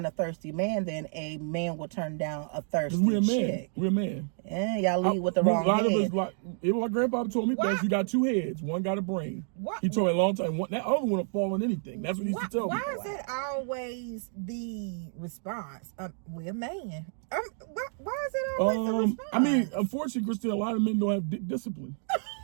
a thirsty man than a man will turn down a thirsty We're a man. chick. We're a man. And y'all lead with the wrong A lot head. of us, like, even my grandpa told me, that you got 2 heads. One got a brain. What? He told me a long time. That other one will fall on anything. That's what he used to tell me. Why is that always the response? We're a man. Why is it always the response? I mean, unfortunately, Christine, a lot of men don't have dick discipline.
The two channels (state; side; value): silent; left; 58 dB below the other